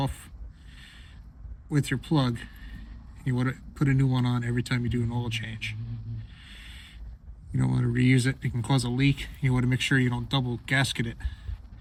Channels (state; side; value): identical; both; correlation 1.00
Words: with your plug. You want to put a new one on every time you do an oil change. You don't want to reuse it. It can cause a leak. You want to make sure you don't double gasket it